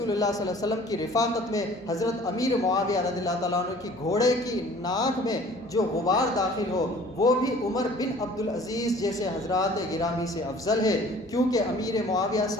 اللہ صلی اللہ علیہ وسلم کی رفاقت میں حضرت امیر معاویہ رضی اللہ تعالیٰ عنہ کی گھوڑے کی ناک میں جو غبار داخل ہو وہ بھی عمر بن عبدالعزیز جیسے حضرات گرامی سے افضل ہے، کیونکہ امیر معاویہ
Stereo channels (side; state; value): left; noise; hum, 29 dB below the sound